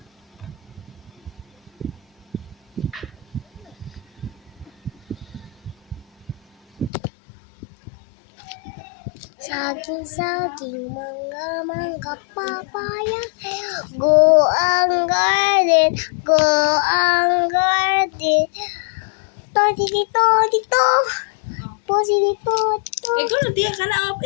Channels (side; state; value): right; drops out; at 6.9 s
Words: Saging, saging, mangga, mangga, papaya. Go ang garden, go ang garden. Todi dito, dito. Posi dito, dito. Ikaw na tiya ka na.